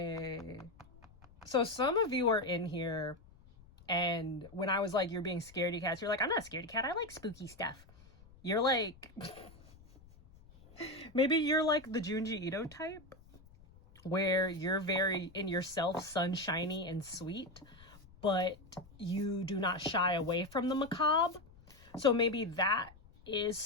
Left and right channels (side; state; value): left; noise; rumble, 24 dB below the sound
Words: So some of you are in here, and when I was like, you're being scaredy cats, you're like, I'm not a scaredy cat, I like spooky stuff. You're like, maybe you're like the Junji Ito type, where you're very in yourself, sunshiny and sweet, but you do not shy away from the macabre. So maybe that is